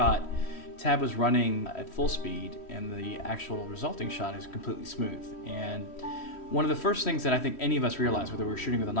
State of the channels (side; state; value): right; late; 3.1 ms